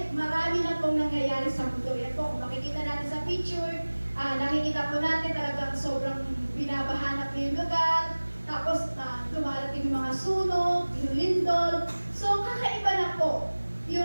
marami na pong nangyayari sa mundo. Yan po, kung makikita natin sa picture, nakikita po natin talagang sobrang binabahanap na yung lugar. Tapos, dumarating yung mga sunog, yung lindol. So, kakaiba na po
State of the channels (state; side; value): inverted; both; correlation -1.00